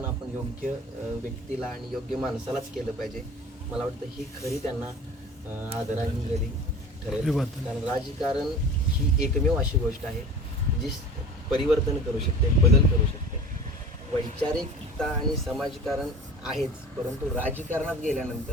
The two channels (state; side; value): normal; both; correlation 0.40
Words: आपण योग्य व्यक्तीला आणि योग्य माणसालाच केलं पाहिजे. मला वाटतं ही खरी त्यांना आदरांजली ठरेल. कारण राजकारण ही एकमेव अशी गोष्ट आहे जी परिवर्तन करू शकते, बदल करू शकते. वैचारिकता आणि समाजकारण आहेच परंतु राजकारणात